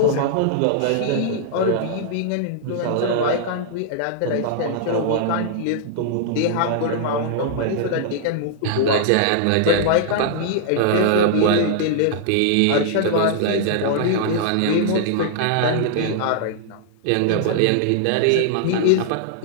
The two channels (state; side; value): different; both; correlation -0.01